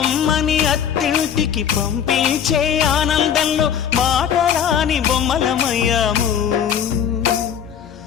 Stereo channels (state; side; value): quieter; right; 8.5 dB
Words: అత్తింటికి పంపించే ఆనందంలో మాటరాని బొమ్మలమయ్యాము,